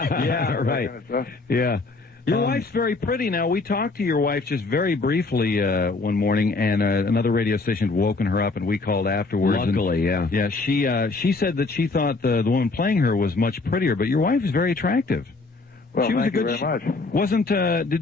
right. Kind of stuff. Yeah. Your wife's very pretty now. We talked to your wife just very briefly one morning, and another radio station had woken her up, and we called afterwards. Luckily, Yeah, she said that she thought the woman playing her was much prettier, but your wife is very attractive. Well, she was thank you very much.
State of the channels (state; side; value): quieter; right; 3.6 dB